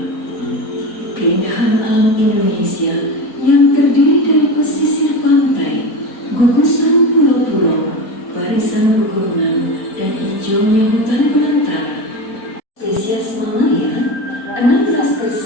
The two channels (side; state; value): right; late; 4.2 ms